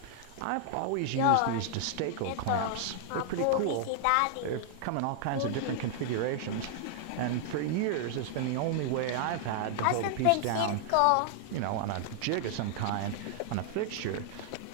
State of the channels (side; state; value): both; different; correlation -0.01